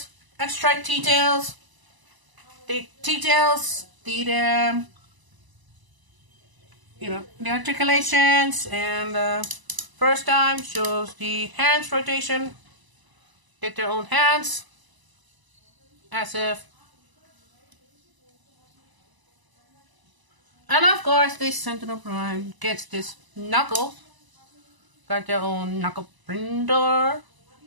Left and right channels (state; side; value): late; left; 1.0 ms